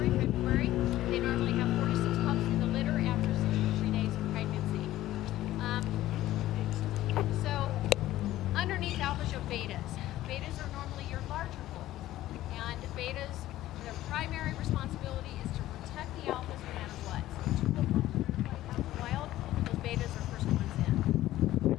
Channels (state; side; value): quieter; right; 14.8 dB